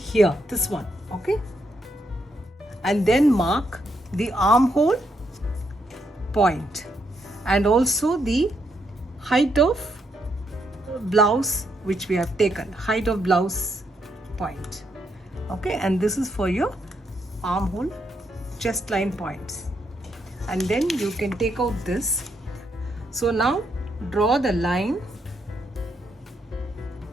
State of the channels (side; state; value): both; normal; correlation 0.78